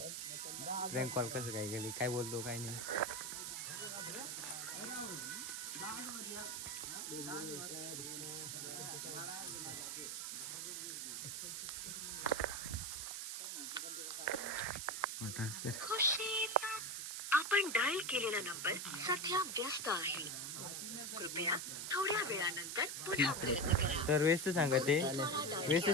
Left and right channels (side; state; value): right; noise; hiss, 4 dB below the sound